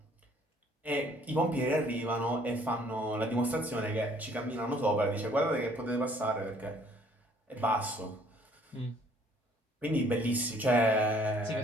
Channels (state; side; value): normal; both; correlation 0.60